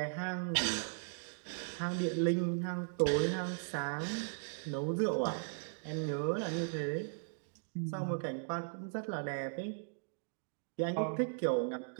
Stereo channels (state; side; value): silent; left; digital silence